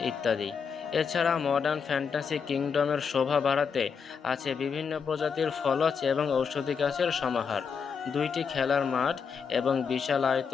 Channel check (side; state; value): right; quieter; 6.2 dB